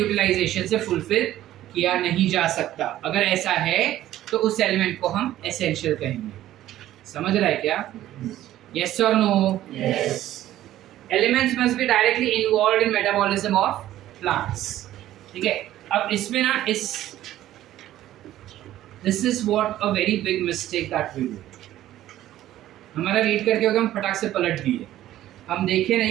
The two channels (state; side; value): quieter; left; 13.6 dB